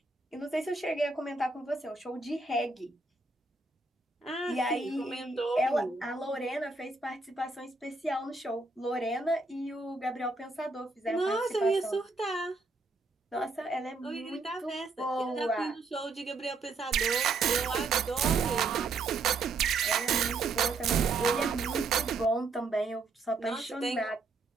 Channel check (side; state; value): left; quieter; 3.7 dB